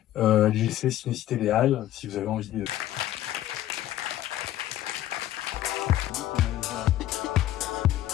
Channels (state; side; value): quieter; right; 13.4 dB